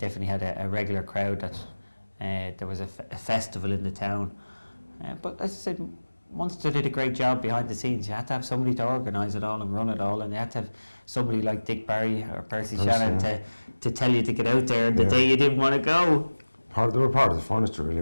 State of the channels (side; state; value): both; inverted; correlation -1.00